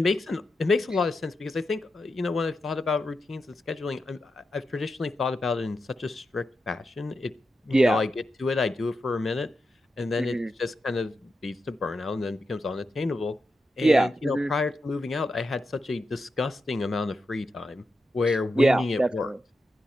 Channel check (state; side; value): normal; both; correlation 0.88